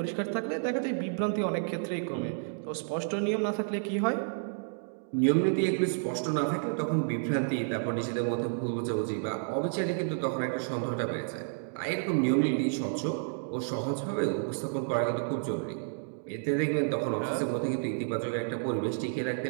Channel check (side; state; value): left; silent; digital silence